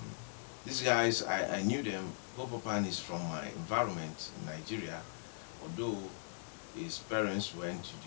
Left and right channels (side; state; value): right; silent; digital silence